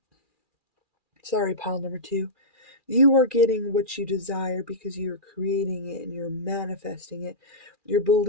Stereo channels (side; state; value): right; late; 2.4 ms